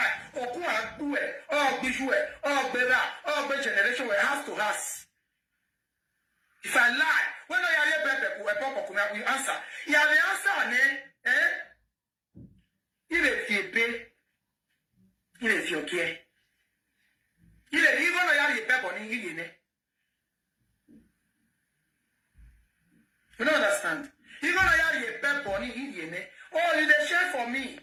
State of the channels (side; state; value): both; identical; correlation 1.00